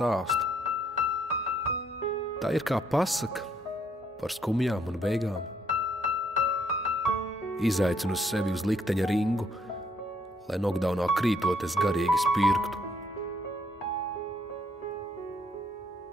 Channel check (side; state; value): both; normal; correlation 0.69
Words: Tā ir kā pasaka par skumjām un beigām. Izaicinu sevi uz likteņa ringu, lai nokdaunā krītot es garīgi spirktu.